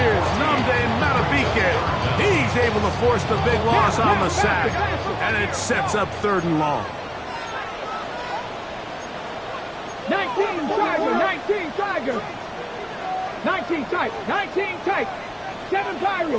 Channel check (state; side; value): identical; both; correlation 1.00